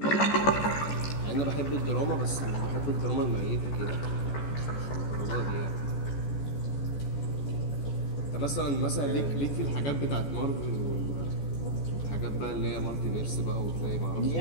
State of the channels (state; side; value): late; right; 14 ms